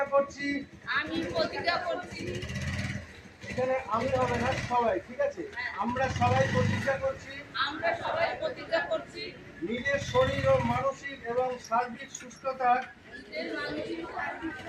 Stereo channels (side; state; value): both; identical; correlation 1.00